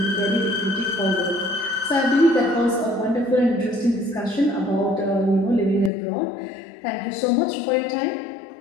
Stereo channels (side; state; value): right; drops out; at 5.9 s